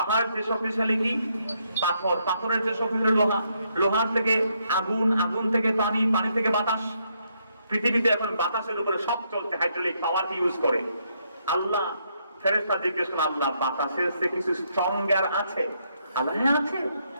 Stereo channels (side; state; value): both; inverted; correlation -0.75